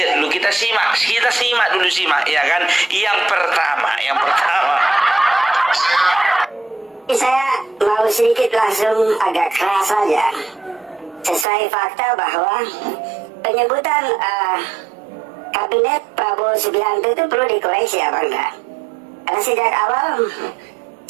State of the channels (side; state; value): left; drops out; at 11.5 s